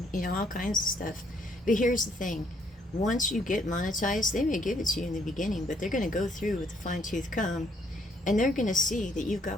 all kinds of stuff. But here's the thing. Once you get monetized, they may give it to you in the beginning, but they're going to go through with a fine-tooth comb, and they're going to see that you've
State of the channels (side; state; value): both; normal; correlation 0.68